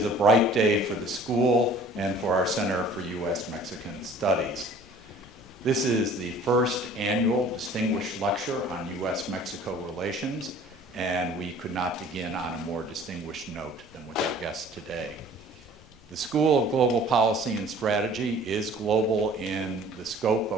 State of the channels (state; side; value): noise; left; rumble, 25 dB below the sound